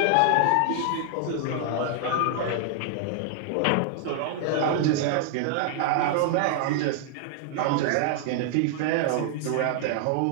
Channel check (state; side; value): different; both; correlation 0.00